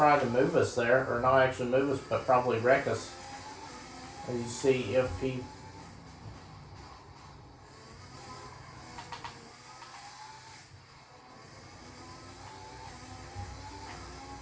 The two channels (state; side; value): identical; both; correlation 1.00